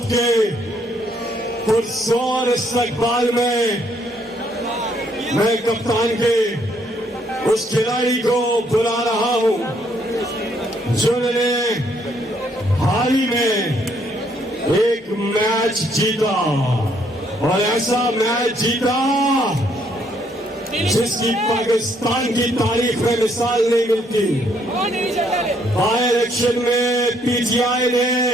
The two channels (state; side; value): normal; both; correlation 0.69